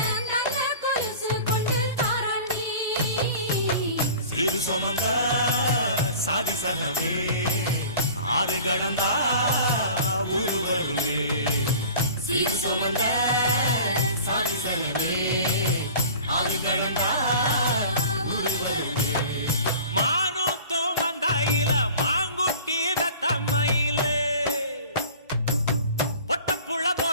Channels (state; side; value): inverted; both; correlation -0.43